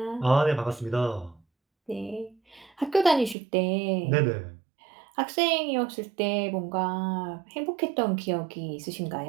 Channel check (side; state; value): left; drops out; at 3.4 s